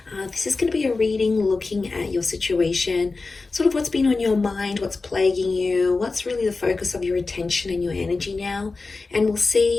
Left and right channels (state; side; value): quieter; right; 3.8 dB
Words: This is going to be a reading looking at your situation, sort of what's been on your mind, what's plaguing you, what's really the focus of your attention and your energy now. And we'll